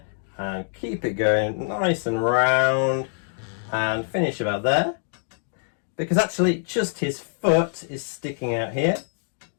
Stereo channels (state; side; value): silent; right; digital silence